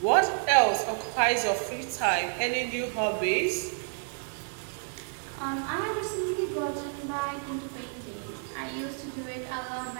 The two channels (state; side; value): silent; left; 58 dB below the other